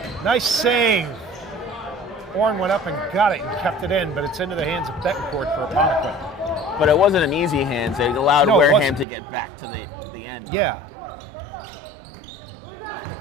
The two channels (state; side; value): drops out; left; at 9.1 s